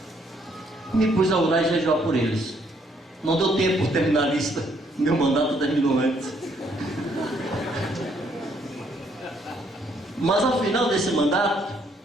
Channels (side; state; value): both; normal; correlation 0.69